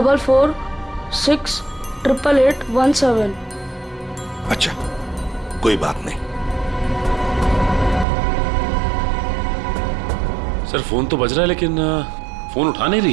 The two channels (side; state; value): left; drops out; at 8.1 s